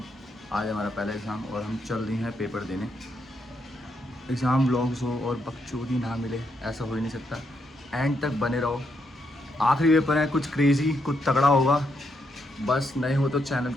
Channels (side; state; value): both; normal; correlation 0.79